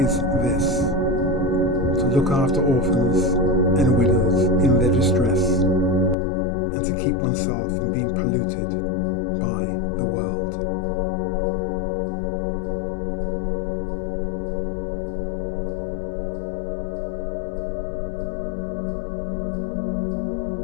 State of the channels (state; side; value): drops out; right; at 6.2 s